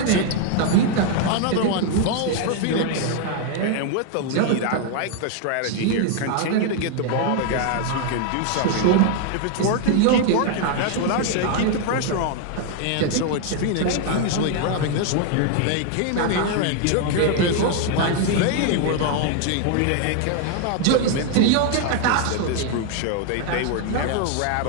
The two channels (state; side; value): different; both; correlation 0.00